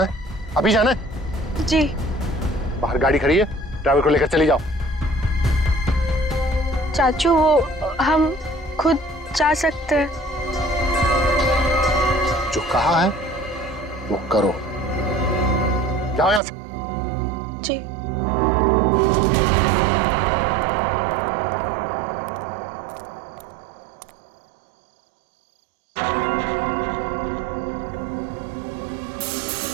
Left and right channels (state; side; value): drops out; left; at 16.4 s